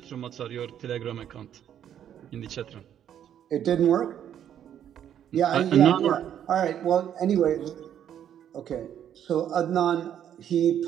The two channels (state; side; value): quieter; left; 9.9 dB